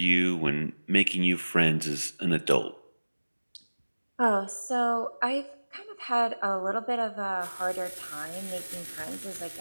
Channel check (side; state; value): both; inverted; correlation -1.00